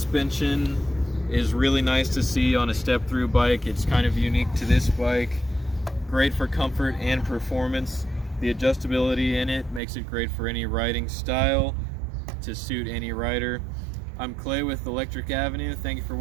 is really nice to see on a step-through bike. It's kind of unique to this bike. Great for comfort and performance. The adjustability in it makes it great for any riding style to suit any rider. I'm Clay with Electric Avenue. Thank you for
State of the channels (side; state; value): left; drops out; at 9.8 s